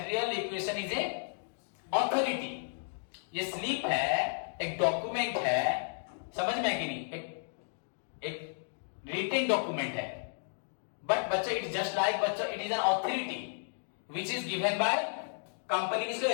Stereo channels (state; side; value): silent; right; digital silence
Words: requisition is a authority, ये स्लिप है, एक डॉक्यूमेंट है, समझ में आया कि नहीं, एक रिटेन डॉक्यूमेंट है, बट बच्चों इट जस्ट लाइक बच्चों it is an authority which is given by company. किसको